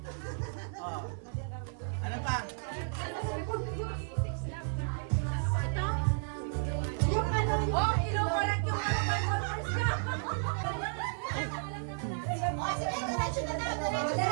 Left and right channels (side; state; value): left; silent; 56 dB below the other